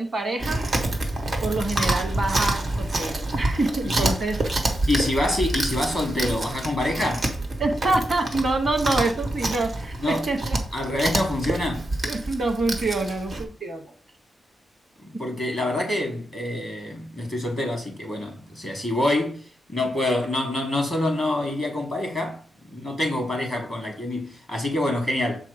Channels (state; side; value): normal; both; correlation 0.85